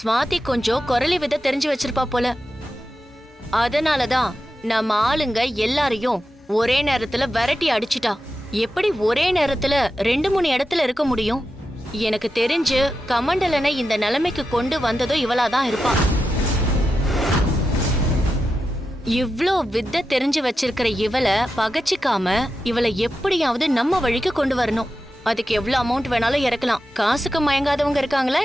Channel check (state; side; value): normal; both; correlation 0.90